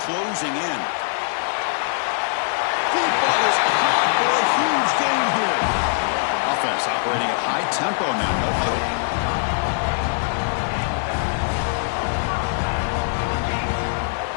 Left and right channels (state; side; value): silent; right; digital silence